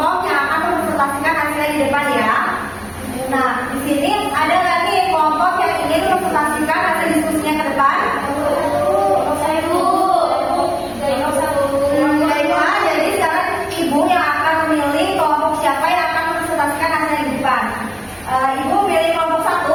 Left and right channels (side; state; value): both; identical; correlation 1.00